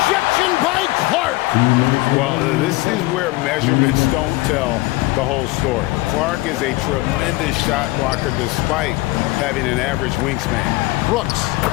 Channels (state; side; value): quieter; right; 20.6 dB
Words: by Clark. Well, this is where measurements don't tell the whole story. Clark is a tremendous shot blocker despite having an average wingspan. Brooks